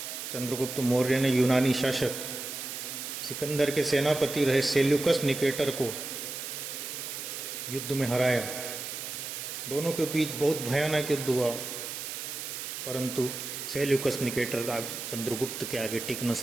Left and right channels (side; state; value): right; noise; hiss, 6 dB below the sound